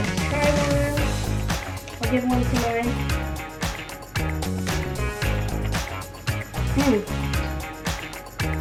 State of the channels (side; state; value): both; identical; correlation 1.00